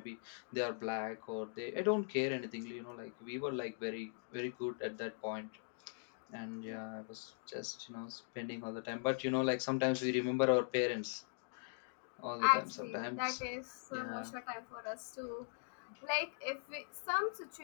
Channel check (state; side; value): silent; right; digital silence